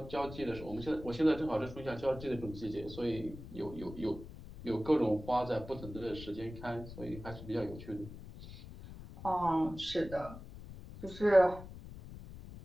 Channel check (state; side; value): noise; left; rumble, 13 dB below the sound